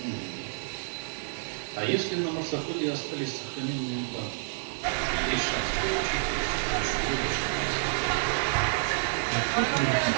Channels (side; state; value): left; silent; digital silence